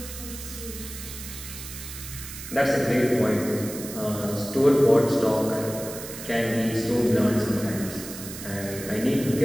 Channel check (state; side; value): noise; right; hiss, 11 dB below the sound